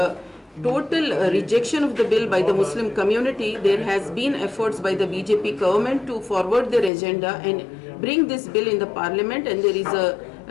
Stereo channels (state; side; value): drops out; right; at 6.9 s